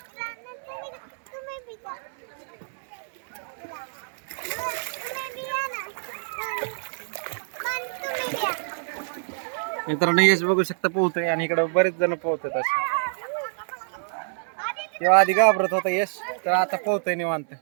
मित्रांनो यश बघू शकता पोहतोय आणि इकडे बरेच जण पोहतात असे. तेव्हा आधी घाबरत होता यश, तर आता पोहतोय निवांत.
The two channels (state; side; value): silent; left; digital silence